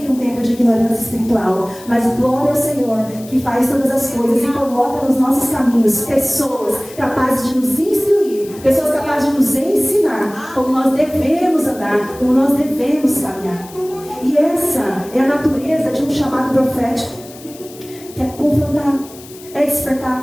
um tempo de ignorância espiritual. Mas glória ao Senhor, que faz todas as coisas e coloca nos nossos caminhos pessoas capazes de nos instruir, pessoas capazes de nos ensinar como nós devemos andar, como nós devemos caminhar. E essa é a natureza de um chamado profético, que é confrontar, é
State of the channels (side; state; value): left; noise; hiss, 19 dB below the sound